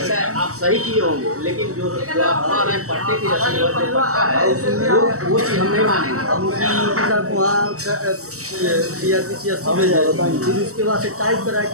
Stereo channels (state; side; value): late; left; 0.65 ms